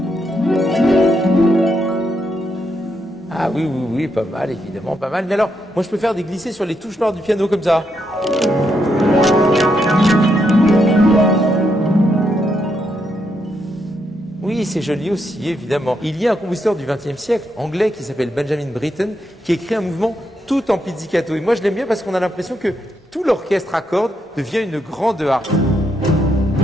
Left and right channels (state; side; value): normal; both; correlation 0.80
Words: Ah oui, oui, oui, pas mal, évidemment, pas mal. Mais alors, moi, je peux faire des glissés sur les touches noires du piano, comme ça. Oui, c'est joli aussi, évidemment. Il y a un compositeur du XXe siècle, anglais, qui s'appelle Benjamin Britten, qui écrit un mouvement tout en pizzicato. Et moi, je l'aime bien parce qu'on a l'impression que tout l'orchestre à cordes devient une grande harpe.